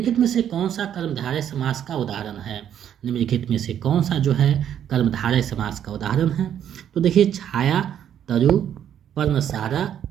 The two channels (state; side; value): quieter; left; 9.7 dB